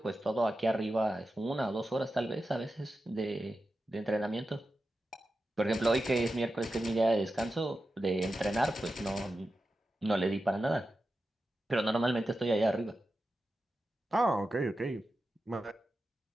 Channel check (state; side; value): normal; both; correlation 0.91